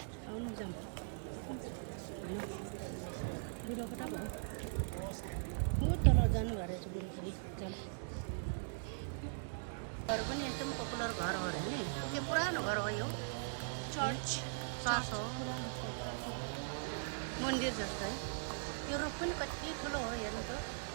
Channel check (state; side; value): silent; left; digital silence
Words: आउनु जाम बुढो कता भयो? बहुत तल जानुभएको रहेछ बुढो फेरि जाम। घर पनि एकदम पपुलर घर हो अरे नि। यो पुरानो घर हो यो। चर्च हो, मन्दिर जस्तो है। यो रुख पनि कति ठुलो हो हेर्नु त।